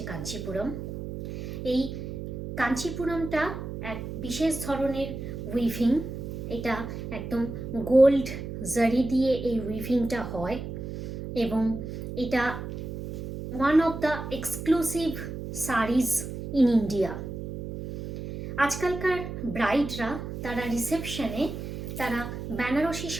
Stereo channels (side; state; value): right; noise; hum, 7 dB below the sound